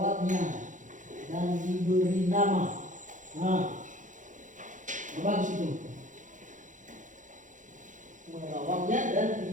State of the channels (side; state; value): left; late; 0.37 ms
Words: dan diberi nama. Nah, bagus itu. Merawatnya dan